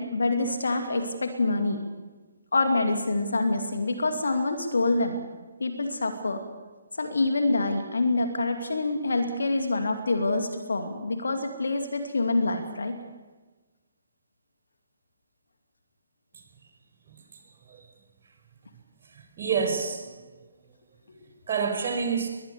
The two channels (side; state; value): both; inverted; correlation -0.81